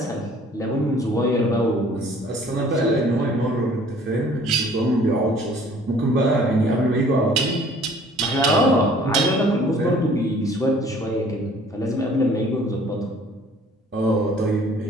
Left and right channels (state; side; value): normal; both; correlation 0.54